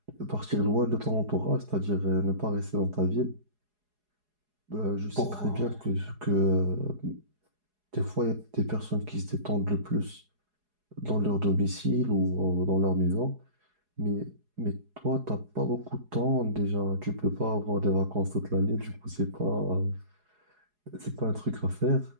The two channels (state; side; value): late; left; 4.8 ms